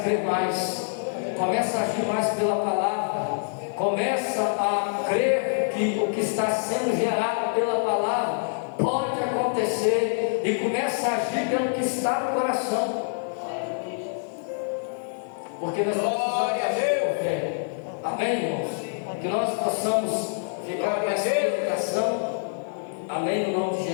crer mais, começa a agir mais pela palavra, começa a crer que o que está sendo gerado pela palavra pode acontecer, e começa a agir pelo que está no coração, porque nós precisamos agir por fé. Amém, irmãos? Que nós possamos ficar com essa meditação. Amém, no nome de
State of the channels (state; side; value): silent; right; digital silence